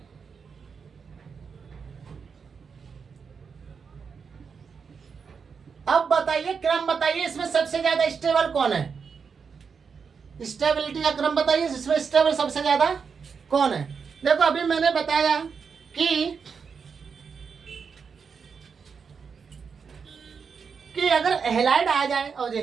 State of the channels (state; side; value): quieter; left; 5.9 dB